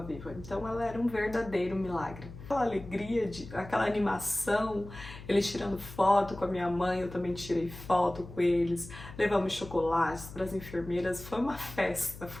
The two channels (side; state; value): left; noise; hum, 14 dB below the sound